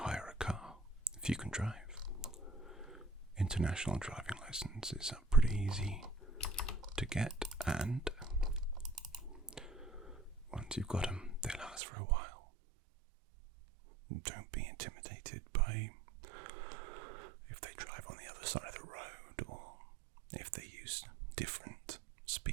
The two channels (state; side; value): drops out; left; at 11.8 s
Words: a car, if you can drive. International driving licenses are pretty easy to get, and once you've got them, they last for a while. Don't be intimidated by if they drive on the other side of the road, or if they use different